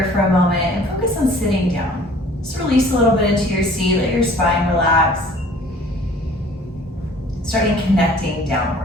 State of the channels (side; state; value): both; normal; correlation 0.51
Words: for a moment and focus on sitting down. Just release a little bit into your seat, let your spine relax. Starting connecting